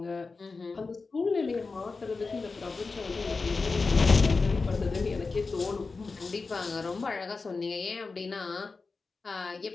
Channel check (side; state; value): right; quieter; 4.2 dB